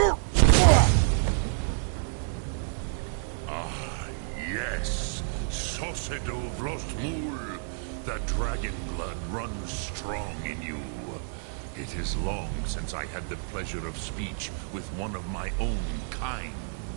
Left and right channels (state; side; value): silent; left; digital silence